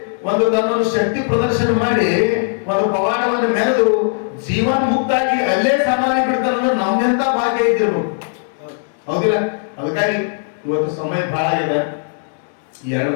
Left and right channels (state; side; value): silent; right; digital silence